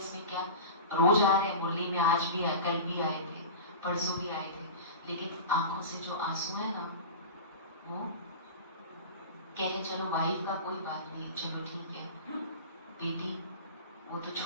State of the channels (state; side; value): inverted; both; correlation -0.31